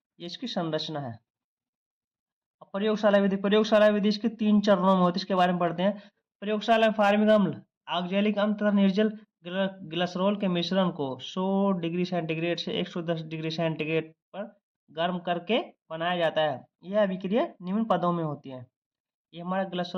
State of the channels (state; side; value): identical; both; correlation 1.00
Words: ये इसकी संरचना है। अब प्रयोगशाला विधि, प्रयोगशाला विधि इसके 3 चरणों में होती है, इसके बारे में पढ़ते हैं। प्रयोगशाला में फार्मिक अम्ल, ऑक्जेलिक अम्ल तथा निर्जल ग्लिसरॉल के मिश्रण को 100 डिग्री सेंटीग्रेड से 110 डिग्री सेंटीग्रेड पर गर्म करके बनाया जाता है। यह अभिक्रिया निम्न पदों में होती है। ये हमारा